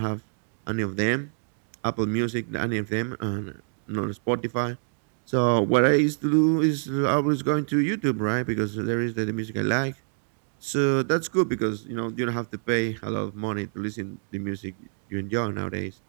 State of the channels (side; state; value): left; silent; digital silence